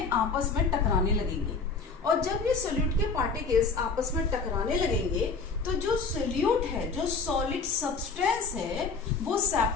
आपस में टकराने लगेंगे और जब ये सोल्यूट के पार्टिकल्स आपस में टकराने लगेंगे तो जो सोल्यूट है, जो सॉलिड सब्सटेंस है, वो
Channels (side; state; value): right; quieter; 4.6 dB